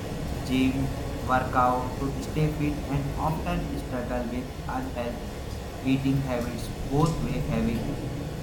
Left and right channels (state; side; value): identical; both; correlation 1.00